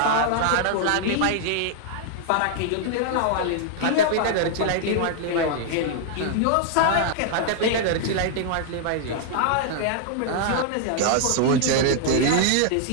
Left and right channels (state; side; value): different; both; correlation -0.01